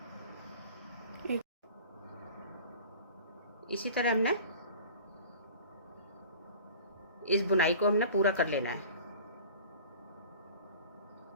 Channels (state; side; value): inverted; both; correlation -0.42